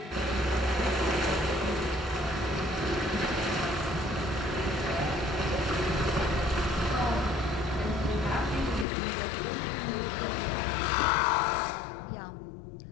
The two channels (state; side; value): drops out; right; at 8.8 s